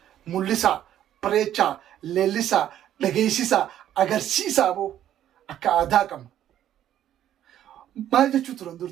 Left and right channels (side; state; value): left; quieter; 11.4 dB